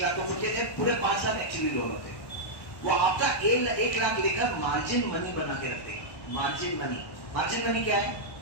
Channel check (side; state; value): right; late; 1.1 ms